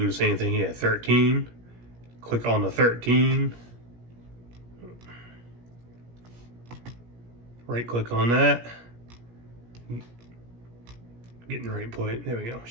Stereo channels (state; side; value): late; left; 17 ms